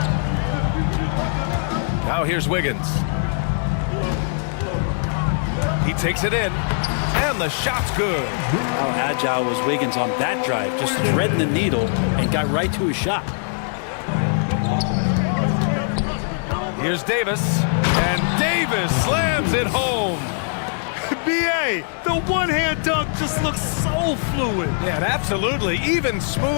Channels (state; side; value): silent; right; digital silence